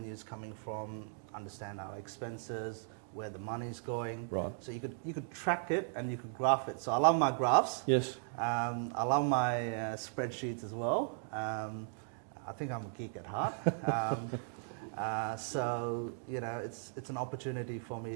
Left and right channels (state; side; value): silent; left; digital silence